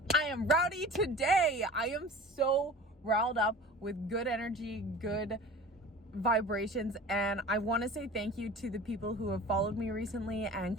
I am rowdy today. I am so riled up with good energy, good vibrations, and I want to say thank you to the people who have followed me recently and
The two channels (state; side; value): normal; both; correlation 0.39